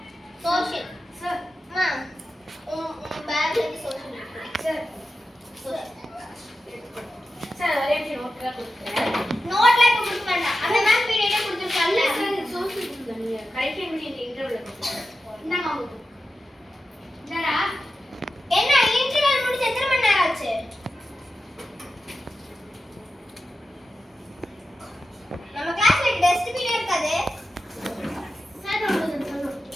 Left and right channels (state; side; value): normal; both; correlation 0.91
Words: சோஷியல் சார் அம்மா பேக்ல இருந்து சோஷியல் எடுத்துக்கோங்க. சார் சார் ஒரே நிமிஷம் நோட்ல கொடுக்கிறேன். நோட்ல கொடுக்க வேண்டாம். அந்த மேம் பீரியடே கொடுத்துருக்காங்க. சார் சோஷியல் கொடுங்க. கரெக்டா இந்த இன்டர்வியூல கொடுங்க. இந்தாங்க உங்களுக்கு. இந்தாடா. என்ன இன்டர்வல் முடிஞ்சு எத்தனை மணி நேரம் ஆச்சு? நம்ம கிளாஸ்ல டஸ்ட்பின் இருக்காது. சார் உங்களுக்கு சொல்லணும்.